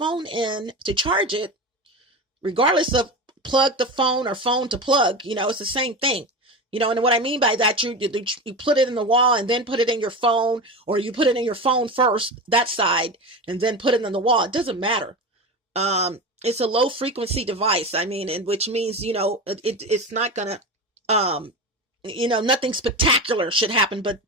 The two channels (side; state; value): both; normal; correlation 0.24